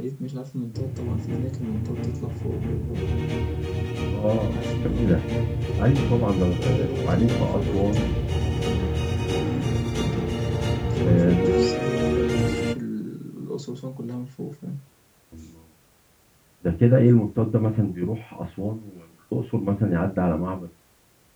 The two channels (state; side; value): identical; both; correlation 1.00